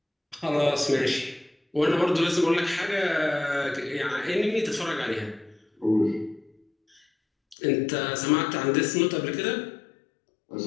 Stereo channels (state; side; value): drops out; right; at 7.6 s